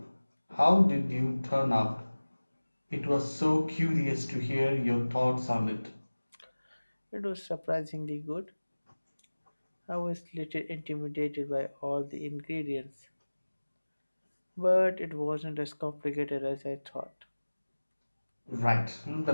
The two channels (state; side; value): inverted; both; correlation -1.00